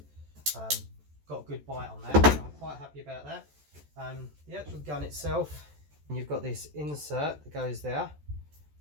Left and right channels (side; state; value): left; late; 14 ms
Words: Got a good bite on that, so I'm quite happy about that. The actual gun itself, you've got this insert that goes there,